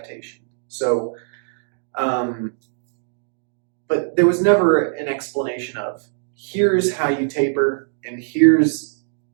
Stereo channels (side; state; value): left; silent; digital silence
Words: So, but there was never an explanation of, here's how you taper, and